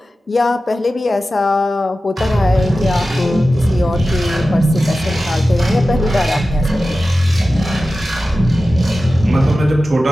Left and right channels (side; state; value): both; normal; correlation 0.94